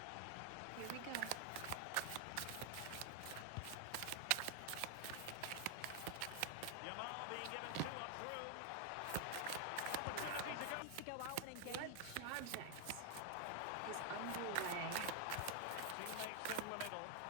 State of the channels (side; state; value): both; different; correlation 0.00